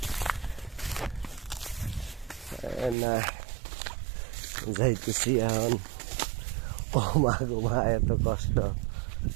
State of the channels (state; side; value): drops out; left; at 3.0 s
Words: না যাইতেছি এখন। মা এত কষ্ট,